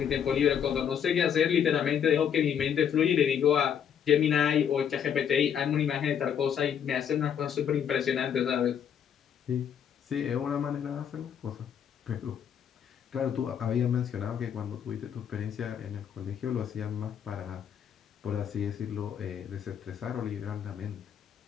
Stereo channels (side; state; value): right; quieter; 8.4 dB